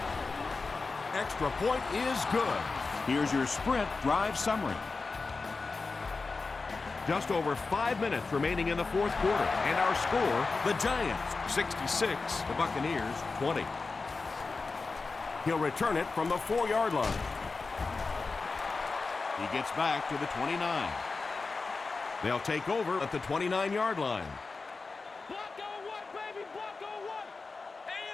Extra point is good. Here's your sprint drive summary. Just over 5 minutes remaining in the fourth quarter. And our score, the Giants 66, the Buccaneers 20. He'll return it from the 4-yard line. He gets back to the 29. They'll take over at the 29-yard line. Block on one, baby. Block on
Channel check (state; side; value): quieter; right; 4.1 dB